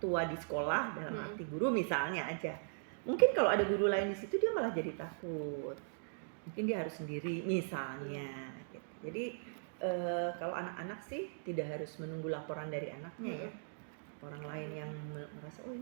tua di sekolah, dalam arti guru misalnya aja. Mungkin kalau ada guru lain di situ dia malah jadi takut. Mungkin dia harus sendiri misalnya. Jadi kalau anak-anak sih tidak harus menunggu laporan dari anaknya ya. Orang lain yang merasa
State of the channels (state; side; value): silent; left; digital silence